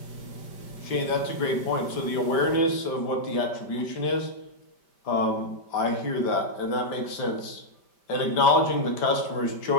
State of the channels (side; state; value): right; late; 5.1 ms